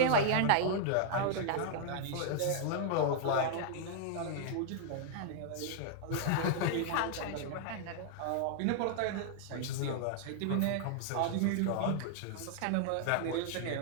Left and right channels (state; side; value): different; both; correlation -0.01